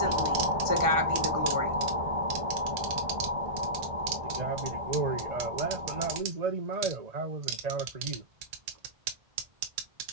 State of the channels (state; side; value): late; left; 2.2 ms